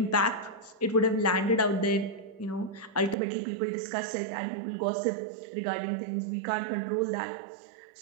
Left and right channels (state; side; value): drops out; left; at 3.2 s